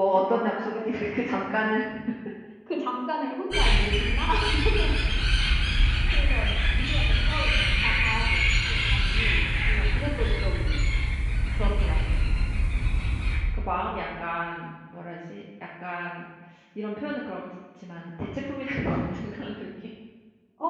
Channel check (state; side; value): identical; both; correlation 1.00